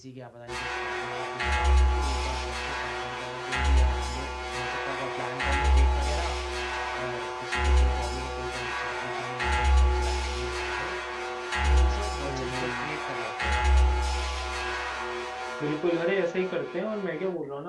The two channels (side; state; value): both; identical; correlation 1.00